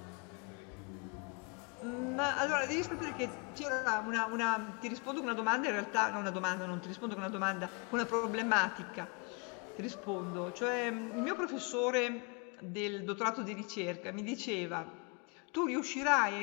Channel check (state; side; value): quieter; right; 33.3 dB